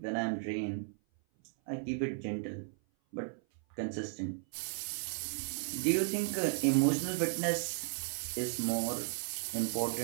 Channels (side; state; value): left; silent; 54 dB below the other